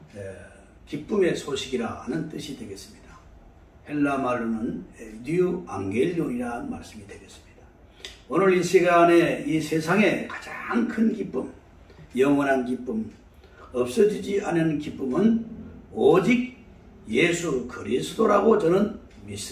기쁨의 소식이라 하는 뜻이 되겠습니다. 헬라 말로는 뉴 앙겔리온이라는 말씀이 되겠습니다. 오늘 이 시간에 이 세상의 가장 큰 기쁨, 영원한 기쁨, 없어지지 않는 기쁨은 오직 예수 그리스도라고 저는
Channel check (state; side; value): identical; both; correlation 1.00